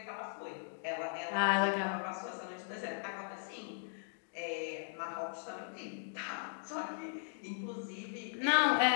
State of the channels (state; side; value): silent; right; digital silence